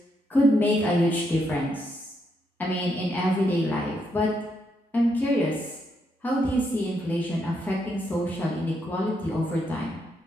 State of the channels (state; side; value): normal; both; correlation 0.78